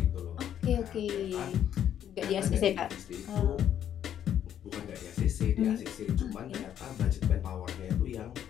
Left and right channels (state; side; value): quieter; right; 10.0 dB